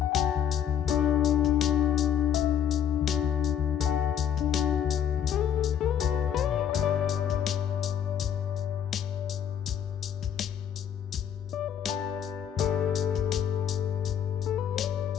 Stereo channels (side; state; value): right; quieter; 9.2 dB